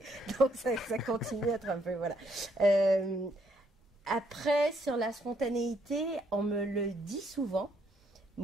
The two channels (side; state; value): both; normal; correlation 0.71